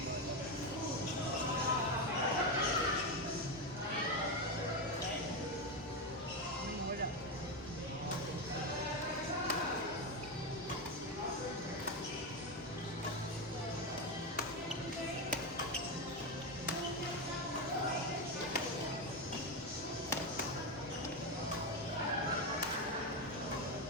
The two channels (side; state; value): both; normal; correlation 0.11